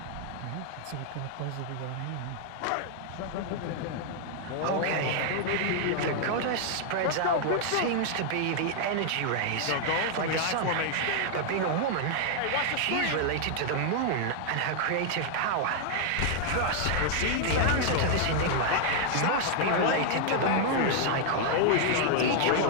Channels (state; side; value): different; both; correlation 0.00